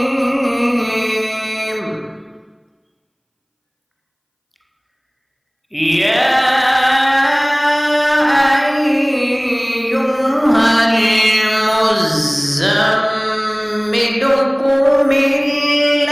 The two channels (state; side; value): identical; both; correlation 1.00